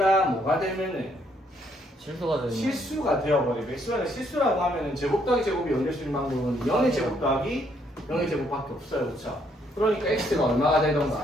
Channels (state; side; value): normal; both; correlation 0.70